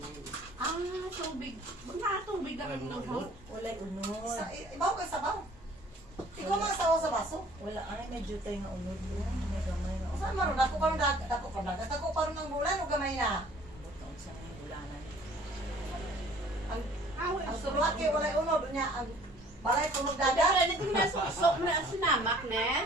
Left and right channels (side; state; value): both; normal; correlation 0.54